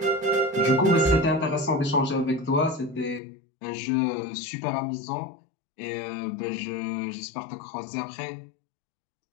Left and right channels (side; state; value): right; drops out; at 3.2 s